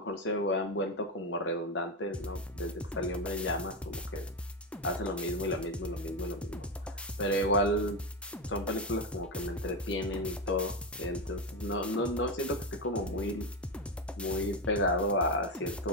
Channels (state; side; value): normal; both; correlation 0.13